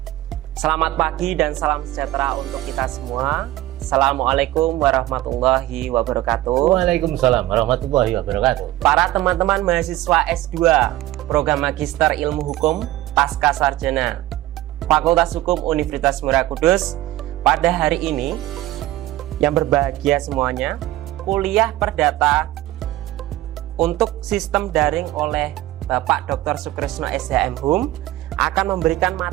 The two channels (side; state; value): left; quieter; 15.8 dB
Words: Selamat pagi dan salam sejahtera untuk kita semua. Assalamualaikum warahmatullahi wabarakatuh. Waalaikumsalam warahmatullahi wabarakatuh. Para teman-teman mahasiswa S2 Program Magister Ilmu Hukum Pasca Sarjana Fakultas Hukum Universitas Muria Kudus, pada hari ini yang berbahagia semuanya, kuliah perdata untuk sistem daring oleh Bapak Dr. Sukresno SHM Hum akan memberikan